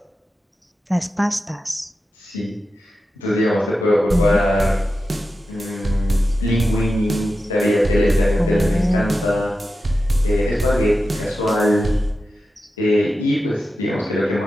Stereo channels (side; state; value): both; normal; correlation 0.91